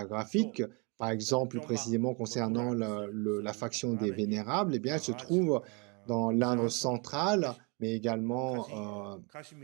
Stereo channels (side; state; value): left; quieter; 32.0 dB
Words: par exemple, précisément concernant la faction des Vénérables, eh bien, elle se trouve dans l'Inde centrale, mais également